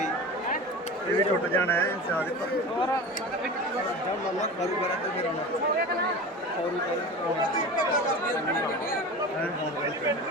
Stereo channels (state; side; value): normal; both; correlation 0.32